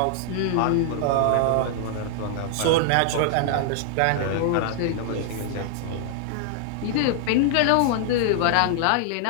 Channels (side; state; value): both; different; correlation -0.01